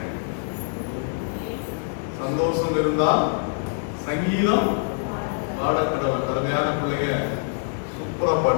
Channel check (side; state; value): right; silent; digital silence